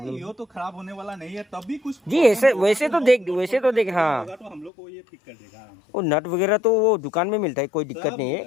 ये तो खराब होने वाला नहीं है। तब भी कुछ जी ऐसे वैसे तो देख हाँ। होगा तो हम लोग को ये ठीक कर देगा आराम से। वो नट वगैरह तो वो दुकान में मिलता है, कोई दिक्कत नहीं है।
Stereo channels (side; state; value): right; drops out; at 4.7 s